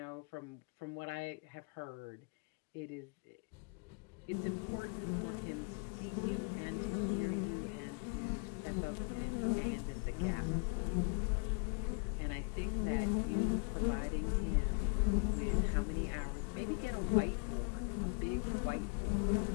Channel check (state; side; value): quieter; right; 36.9 dB